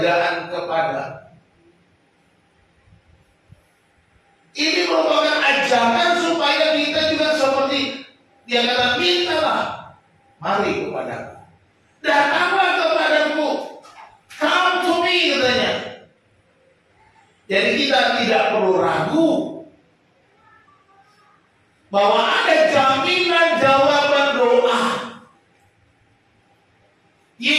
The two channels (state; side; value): identical; both; correlation 1.00